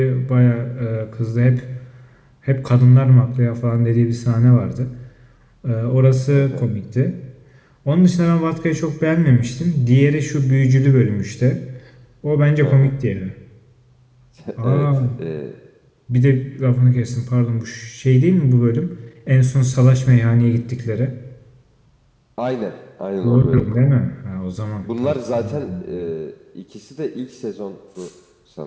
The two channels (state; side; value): identical; both; correlation 1.00